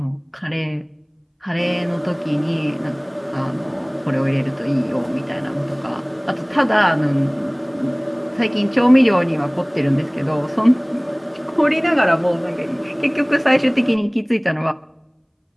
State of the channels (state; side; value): identical; both; correlation 1.00